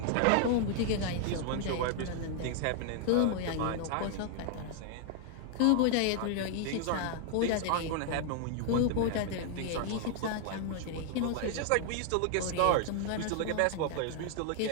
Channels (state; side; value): different; both; correlation 0.00